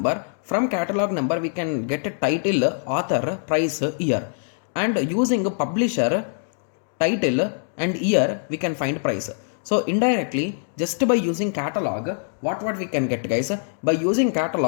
from catalog number we can get a title, author, price, year. and using publisher, title and year we can find price. So indirectly, just by using catalog, what we can get, guys? By using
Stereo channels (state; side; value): silent; right; digital silence